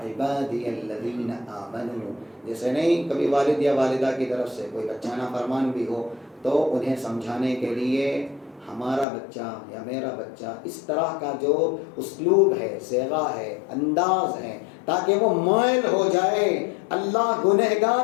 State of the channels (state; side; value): drops out; right; at 9.1 s